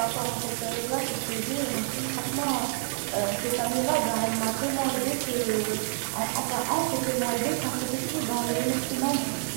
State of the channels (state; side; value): silent; left; digital silence